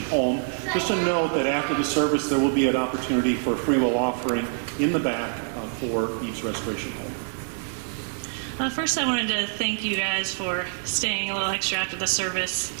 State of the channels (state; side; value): silent; left; digital silence